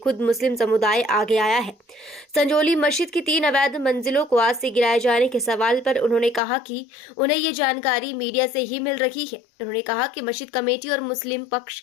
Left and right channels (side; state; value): right; drops out; at 6.4 s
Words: मुस्लिम समुदाय आगे आया है। संजौली मस्जिद की 3 अवैध मंजिलों को आज से गिराए जाने के सवाल पर उन्होंने कहा कि उन्हें ये जानकारी मीडिया से ही मिल रही है। उन्होंने कहा कि मस्जिद कमेटी और मुस्लिम पक्ष